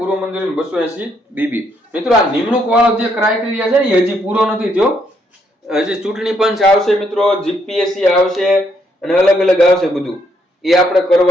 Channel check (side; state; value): both; normal; correlation 0.73